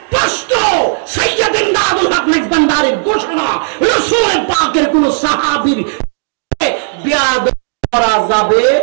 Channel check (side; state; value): left; silent; digital silence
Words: সৈয়দ ইমদাদুল হক মাইজবান্ডারির ঘোষণা, রাসূল পাকের কোন সাহাবীর বিয়াদব করা যাবে